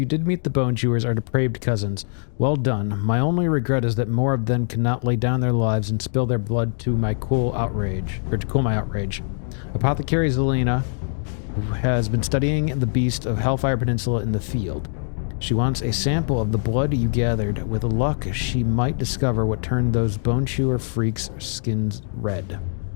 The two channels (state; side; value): silent; right; digital silence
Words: did meet the Bone Chewers, our depraved cousins. Well done. My only regret is that more of them cannot lay down their lives and spill their blood to my cool outrage, or to cool my outrage. Apothecary Zelina has been studying the beast of Hellfire Peninsula in the field. She wants a sample of the blood you gathered. With luck, she might discover what turned those Bone Chewer freaks' skins red.